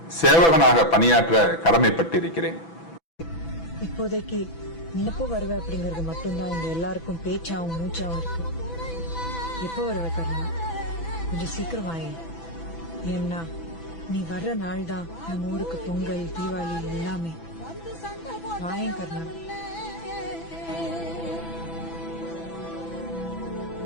சேவகனாக பணியாற்ற கடமைப்பட்டிருக்கிறேன். இப்போதைக்கு நீ எப்போ வருவ அப்படிங்கறது மட்டும்தான் இங்க எல்லாருக்கும் பேச்சாவும் மூச்சாவும் இருக்கு. எப்போ வருவ கர்ணா? கொஞ்சம் சீக்கிரம் வாயே. ஏன்னா நீ வர்ற நாள் தான் நம்ம ஊருக்கு பொங்கல், தீபாவளி எல்லாமே. வாயேன் கர்ணா.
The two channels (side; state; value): right; late; 6.0 ms